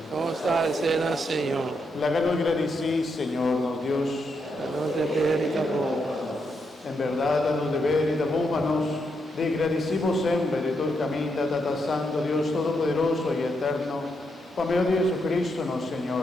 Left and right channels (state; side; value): normal; both; correlation 0.81